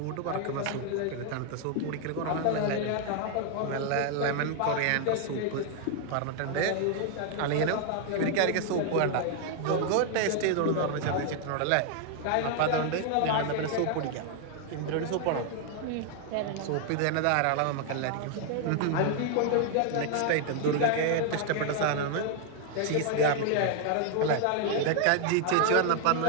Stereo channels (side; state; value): both; different; correlation 0.00